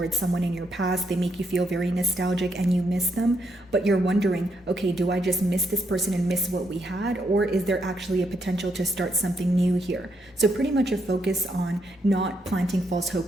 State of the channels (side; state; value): both; normal; correlation 0.77